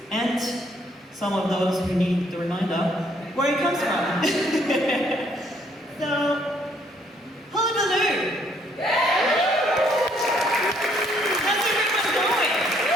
and some of those who need the reminder, where it comes from. So, Hullabaloo! How's everyone going?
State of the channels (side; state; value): both; normal; correlation 0.67